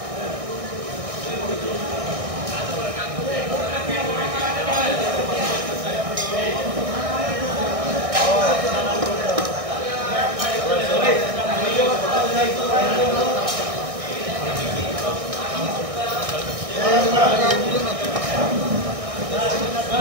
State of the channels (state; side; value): late; left; 1.6 ms